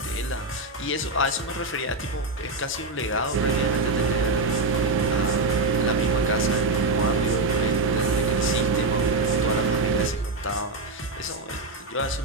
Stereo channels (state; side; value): quieter; left; 3.3 dB